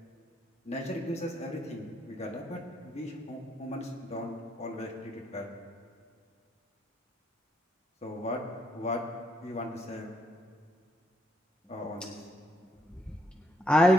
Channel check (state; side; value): normal; both; correlation 0.74